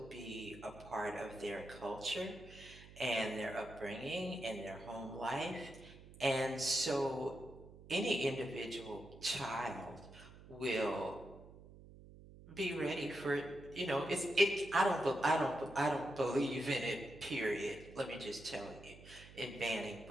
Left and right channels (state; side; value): noise; right; hum, 18 dB below the sound